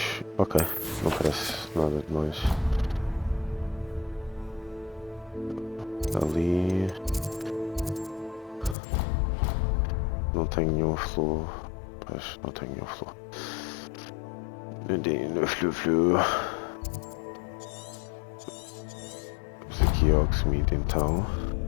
Ok, não parece nada demais. Ali não tenho nenhum fluo. Pois não tenho nenhum fluo. No flu. Vamos aqui ao Hogsmeade então.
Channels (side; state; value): right; drops out; at 8.8 s